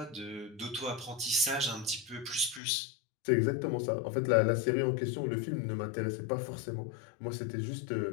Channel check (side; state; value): right; drops out; at 2.6 s